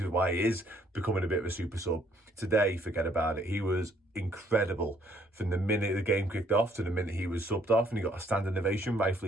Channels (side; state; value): both; normal; correlation 0.65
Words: is why he is becoming a bit of a super sub. Today, forget about it. He was incredible from the minute the game kicked off to the minute he was subbed off, and he got a standing ovation,